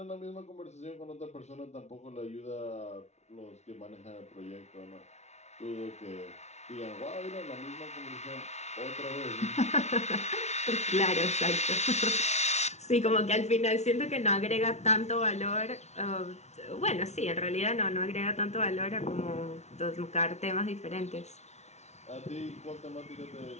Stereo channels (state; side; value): late; right; 0.32 ms